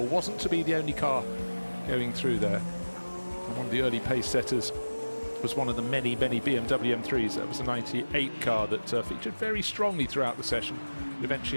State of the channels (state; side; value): inverted; both; correlation -1.00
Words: Wasn't to be the only car going through there. And one of the early pace setters was one of the many, many BMW M3s. That was a 98 car that featured very strongly throughout the session. It